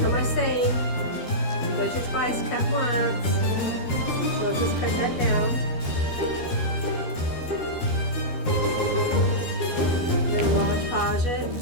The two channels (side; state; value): right; late; 12 ms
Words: know my saying, measure twice, cut once. So let's just cut that down. Then Mod Podge it.